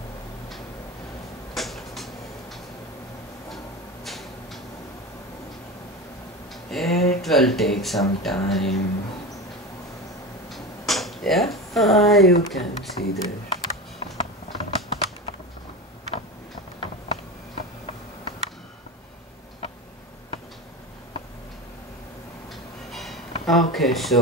It will take some time. Yeah, you can see there. Okay,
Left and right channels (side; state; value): both; normal; correlation 0.25